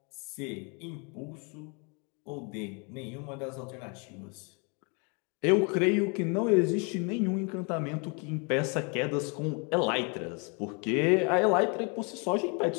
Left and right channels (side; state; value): right; quieter; 33.8 dB